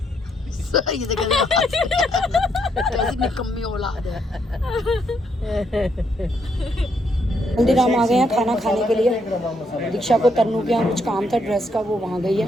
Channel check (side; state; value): both; normal; correlation 0.74